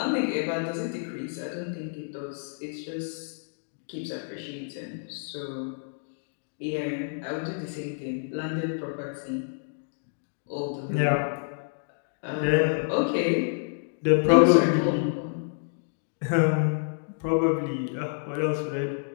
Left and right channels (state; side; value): silent; right; digital silence